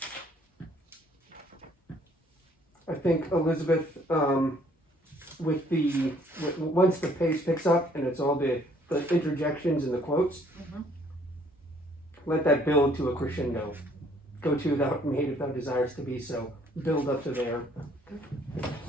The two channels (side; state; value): both; normal; correlation 0.62